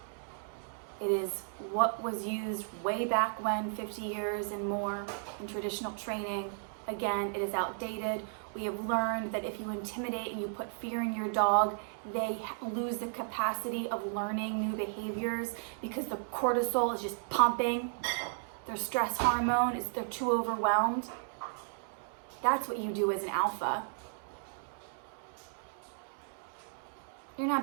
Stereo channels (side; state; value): left; silent; digital silence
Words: It is what was used way back when, 50 years and more in traditional training. Again, it is outdated. We have learned that if you intimidate and you put fear in your dog, they lose the capacity of learning new behaviors because the cortisol is just pumping. Their stress hormone is, they're too overwhelmed. That's what you do as an alpha. You're